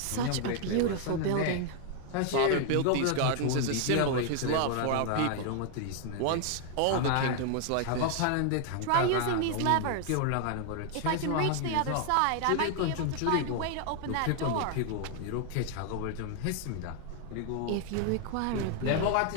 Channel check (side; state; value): both; different; correlation 0.00